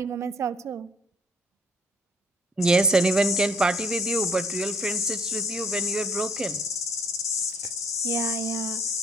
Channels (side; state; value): both; normal; correlation 0.62